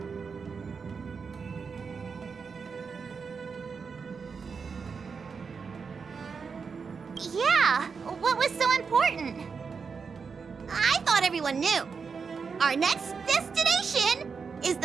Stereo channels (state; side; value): quieter; left; 5.5 dB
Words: Yeah, what was so important? I thought everyone knew. Our next destination is